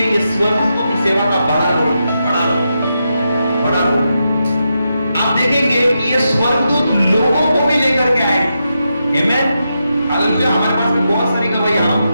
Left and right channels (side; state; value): both; inverted; correlation -0.86